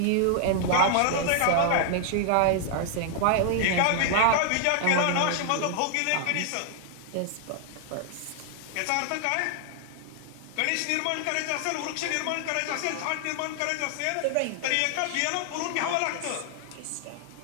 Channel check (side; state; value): both; different; correlation 0.00